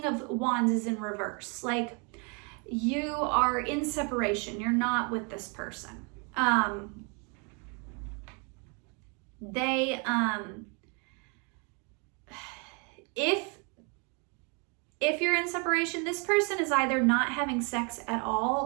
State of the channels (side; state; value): left; quieter; 34.5 dB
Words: of Wands is in reverse. Like, you are in separation. You're not with this person. If you're in separation, this person is either not having sex at all,